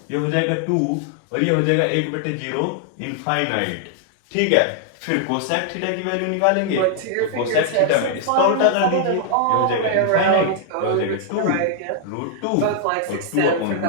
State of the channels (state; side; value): different; both; correlation 0.00